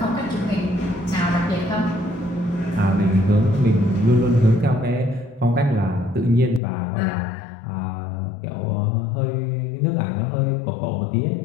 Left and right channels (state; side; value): drops out; right; at 6.6 s